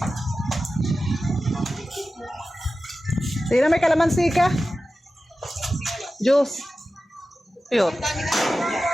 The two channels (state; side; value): normal; both; correlation 0.94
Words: Sino may kalamansi ka? Juice. Yun.